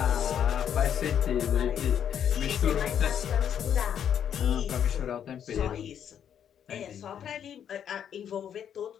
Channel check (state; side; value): quieter; right; 9.0 dB